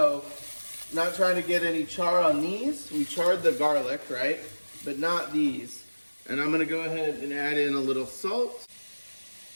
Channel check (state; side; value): inverted; both; correlation -1.00